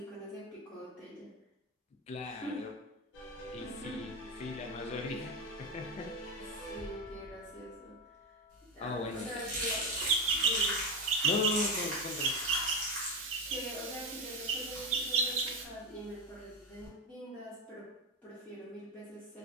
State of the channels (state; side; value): normal; both; correlation 0.14